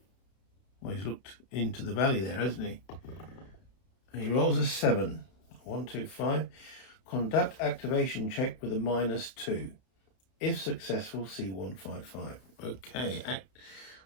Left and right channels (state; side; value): late; right; 31 ms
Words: Well, he's looked into the valley there, hasn't he? And he rolls a 7. 1, 2, 5. Conduct activation check with a -2. If successful, C155. Okay.